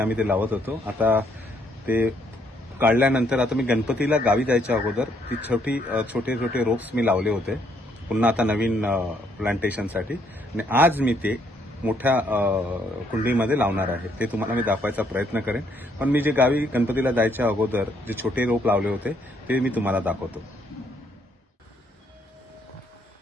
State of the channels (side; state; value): both; normal; correlation 0.70